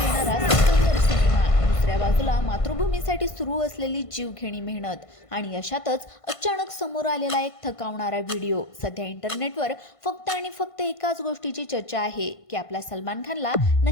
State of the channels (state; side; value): late; right; 1.5 ms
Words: येणारा सिकंदर सिनेमा, दुसऱ्या बाजूला मातृभूमीसाठी सुरू असलेली जीवघेणी मेहनत आणि अशातच अचानक समोर आलेला एक थकावणारा व्हिडिओ. सध्या इंटरनेटवर फक्त आणि फक्त एकाच गोष्टीची चर्चा आहे की आपल्या सलमान खानला